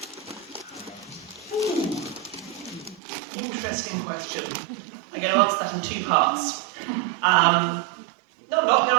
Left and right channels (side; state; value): left; drops out; at 3.0 s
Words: Interesting question. I'm going to answer that in two parts. No, I'm not going to